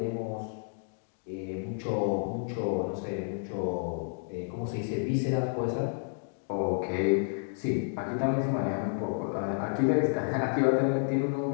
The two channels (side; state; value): right; silent; digital silence